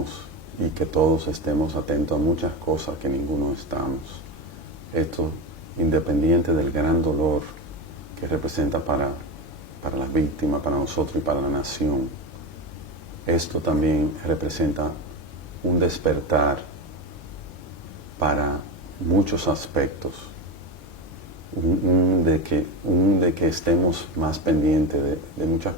y que todos estemos atentos a muchas cosas que ninguno estamos. Esto independiente del gran dolor que representa para las víctimas, para nosotros y para la nación. Esto también representa un despertar para muchos aspectos, de que estemos más pendientes de muchas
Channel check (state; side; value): normal; both; correlation 0.17